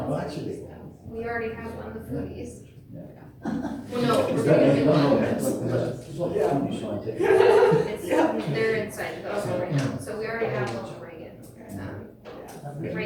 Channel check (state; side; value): identical; both; correlation 1.00